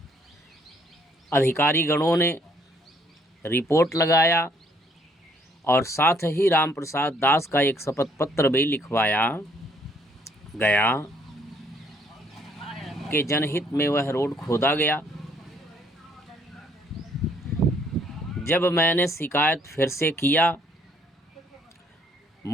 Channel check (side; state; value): both; normal; correlation 0.64